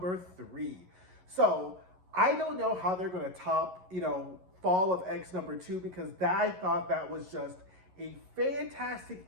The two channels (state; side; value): late; left; 11 ms